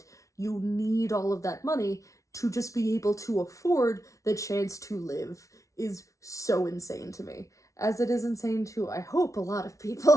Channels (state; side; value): late; right; 0.15 ms